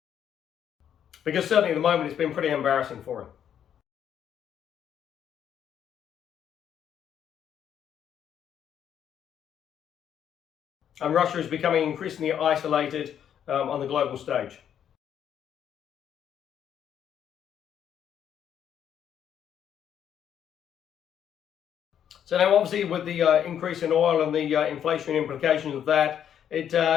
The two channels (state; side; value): quieter; right; 9.3 dB